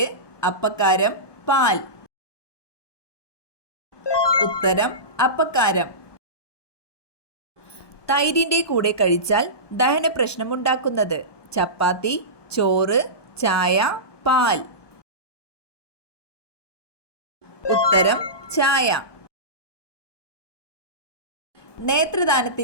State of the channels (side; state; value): right; late; 1.2 ms